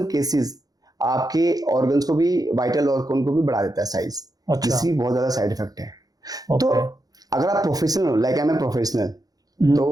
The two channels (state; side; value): late; left; 0.18 ms